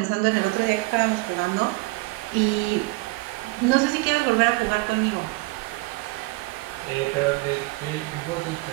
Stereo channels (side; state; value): left; quieter; 23.7 dB